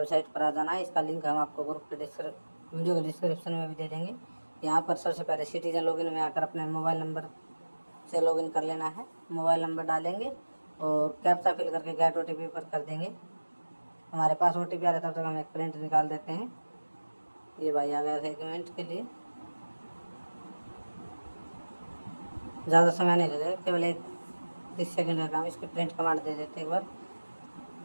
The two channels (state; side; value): inverted; both; correlation -1.00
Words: पर आ जाना है। इसका लिंक हम आपको ग्रुप के वीडियो के डिस्क्रिप्शन में भी दे देंगे। यहाँ पर सबसे पहले सिटीजन लॉगिन में आकर अपने मोबाइल नंबर से लॉगिन कर लेना है। मोबाइल नंबर डालेंगे और कैप्चा फिल करके गेट OTP पर कर देंगे। हमारे पास OTP आ रहा है, तब तक हम एक प्रिंट निकाल देते हैं। ये भाई आ गया था 1 मिनट के लिए, ज़्यादा समय नहीं लगेगा, केवल 30 सेकंड का काम। इसकी प्रिंट कमांड दे देते एक बार।